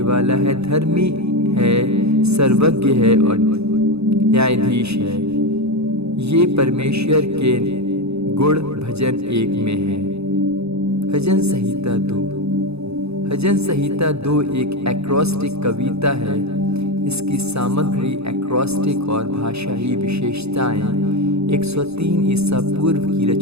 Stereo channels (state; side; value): late; left; 0.79 ms